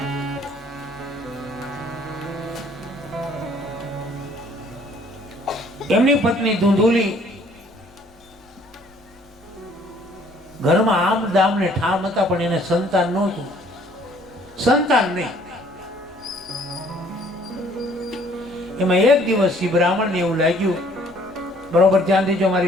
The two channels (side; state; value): left; noise; rumble, 29 dB below the sound